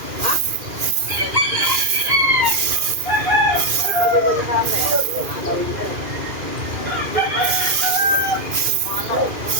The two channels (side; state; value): left; late; 2.4 ms